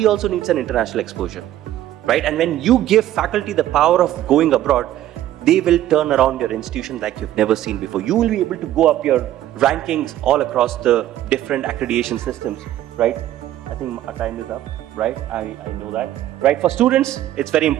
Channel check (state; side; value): quieter; left; 13.1 dB